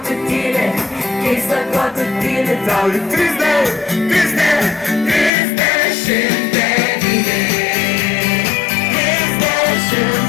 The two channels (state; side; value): drops out; right; at 5.3 s